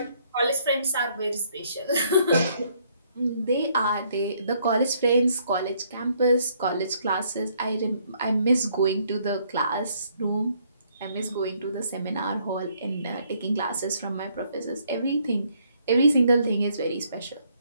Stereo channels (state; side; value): inverted; both; correlation -0.68